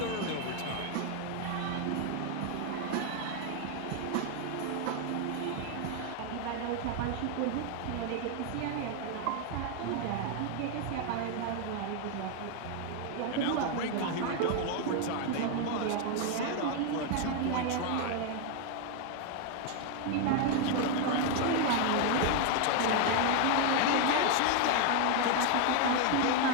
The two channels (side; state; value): both; different; correlation 0.01